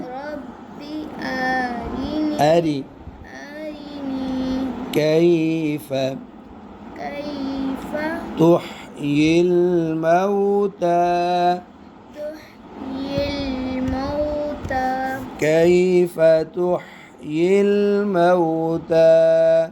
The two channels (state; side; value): identical; both; correlation 1.00